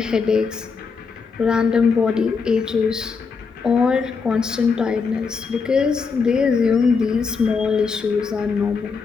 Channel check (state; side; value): quieter; right; 5.2 dB